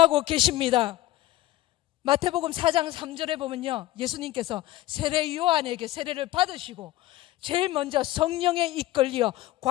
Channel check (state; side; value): quieter; right; 16.0 dB